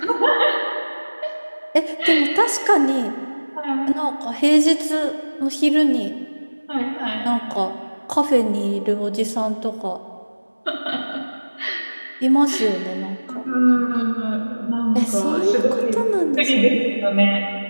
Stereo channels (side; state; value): both; inverted; correlation -1.00